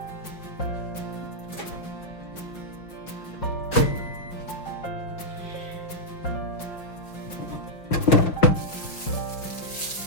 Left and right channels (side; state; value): right; late; 5.7 ms